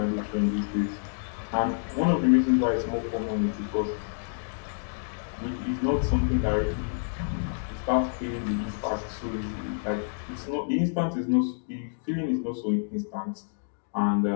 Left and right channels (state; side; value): silent; right; digital silence